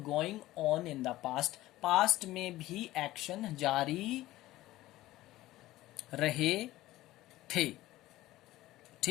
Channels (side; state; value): right; quieter; 16.4 dB